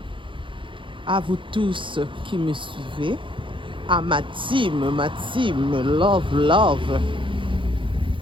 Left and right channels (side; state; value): left; late; 0.24 ms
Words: à vous tous qui me suivez, à ma team Love.